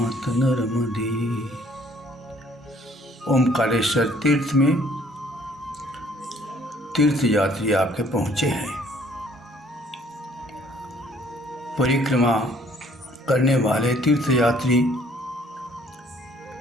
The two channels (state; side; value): normal; both; correlation 0.60